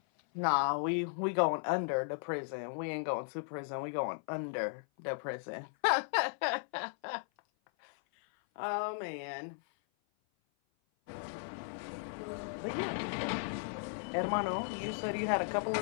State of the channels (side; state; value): right; silent; 54 dB below the other